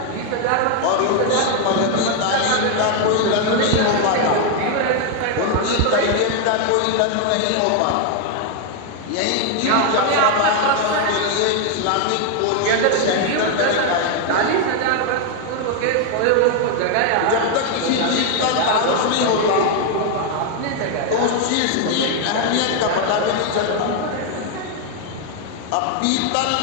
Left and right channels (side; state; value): both; different; correlation 0.00